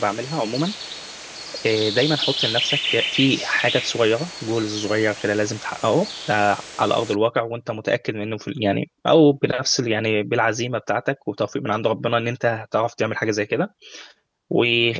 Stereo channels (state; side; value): identical; both; correlation 1.00